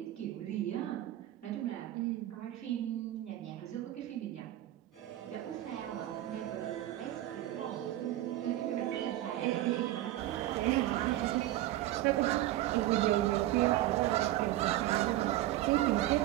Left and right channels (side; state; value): left; quieter; 14.7 dB